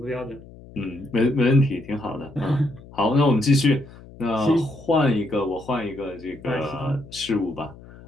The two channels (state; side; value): noise; left; hum, 19 dB below the sound